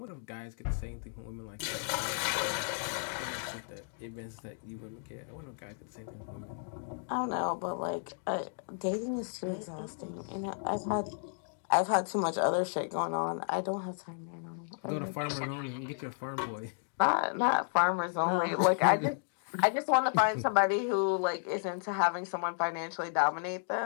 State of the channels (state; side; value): silent; right; digital silence